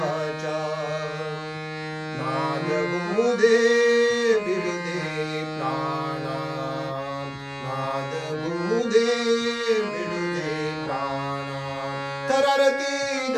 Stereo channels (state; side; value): identical; both; correlation 1.00